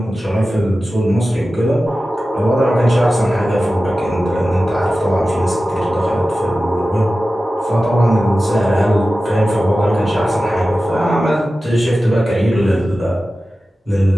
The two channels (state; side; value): normal; both; correlation 0.94